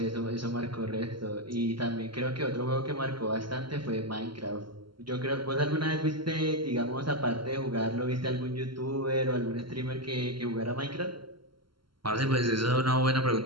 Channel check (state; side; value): late; left; 0.73 ms